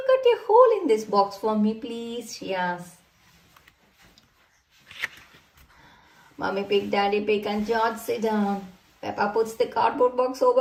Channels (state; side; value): identical; both; correlation 1.00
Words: cut a hole in this box for me, please? She asks. Mommy Pig, Daddy Pig and George sit down. Peppa puts the cardboard box